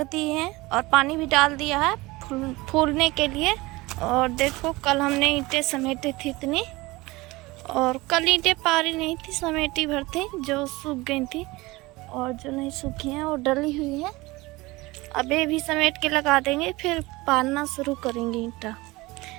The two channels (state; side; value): quieter; left; 21.5 dB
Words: दिए हैं और पानी भी डाल दिया है फूलने के लिए। और देखो कल हमने ईंटें समेटी थी इतनी, और कल ईंटें पारी नहीं थी, समेटी भर थी जो सूख गई थी, और जो नहीं सूखी हैं वो डली हुई है। अब ये भी समेट के लगा देंगे, फिर पारना शुरू करेंगे ईंटा।